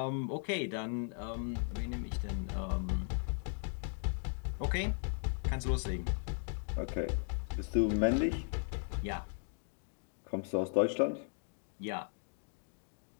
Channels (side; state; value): right; silent; 53 dB below the other